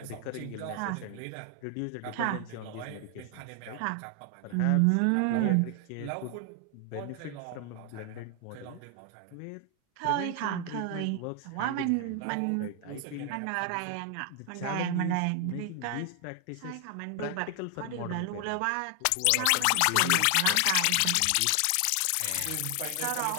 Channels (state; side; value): different; both; correlation 0.00